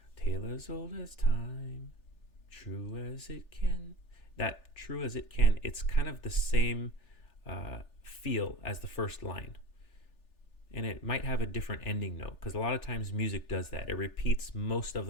tale as old as time, true as it can. That true as it can, it's kind of the same feel as the first line. And it might have a different ending note because a lot of times music does that. It repeats most of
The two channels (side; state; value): right; late; 3.4 ms